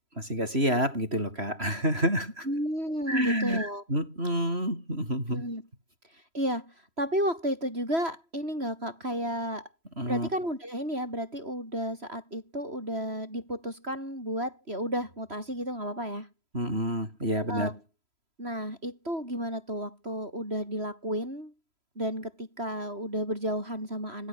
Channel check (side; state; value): left; late; 3.0 ms